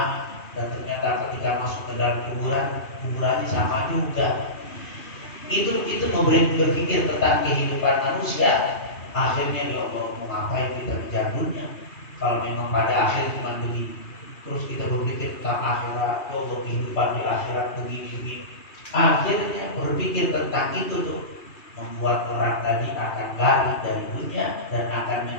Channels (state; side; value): late; right; 2.9 ms